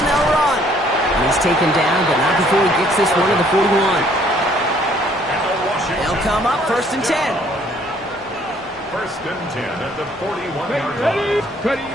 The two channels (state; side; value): normal; both; correlation 0.62